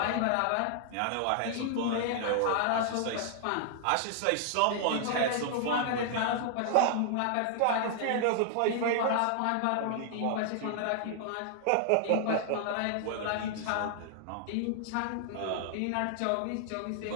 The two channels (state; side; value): different; both; correlation 0.00